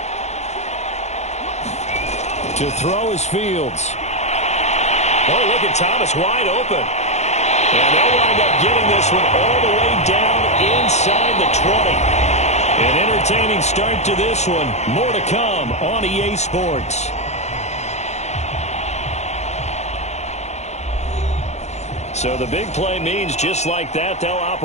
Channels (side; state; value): right; late; 0.32 ms